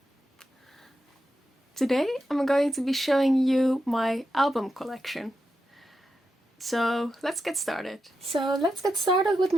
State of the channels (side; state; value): both; normal; correlation 0.87